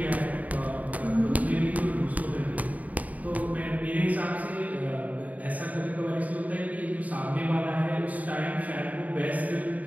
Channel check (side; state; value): left; late; 0.073 ms